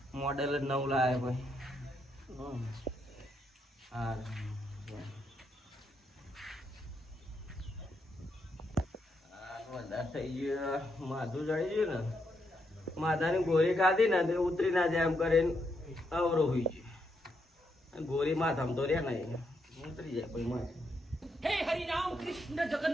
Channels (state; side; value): normal; both; correlation 0.79